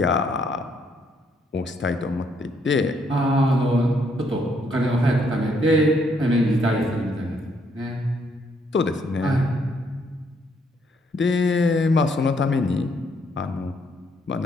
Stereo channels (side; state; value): both; normal; correlation 0.71